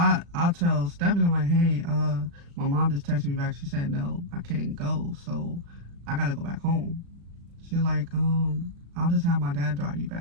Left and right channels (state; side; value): late; left; 35 ms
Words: tell Stephanie, I'm like, hey, my mom just texted me back. She said, no, I can't go. So I gotta go back home. She's like, I'll just have my dad drive you